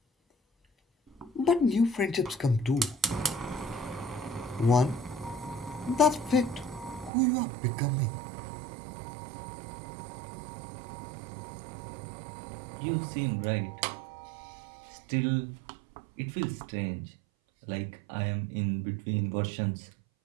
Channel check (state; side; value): drops out; left; at 7.1 s